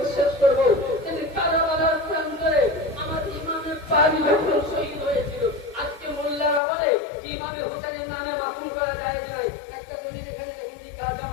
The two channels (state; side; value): drops out; right; at 6.6 s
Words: শেষ করবো। কিন্তু কারবালার প্রান্তরে আমার ইমামের পাক যখন শহীদ হয়েছিল, আজকে মোল্লারা বলে যে ইমামে হুসাইনের নামে মাফুন করা যায় নাই। একটা দলিল এখানে যখন লেখা আছে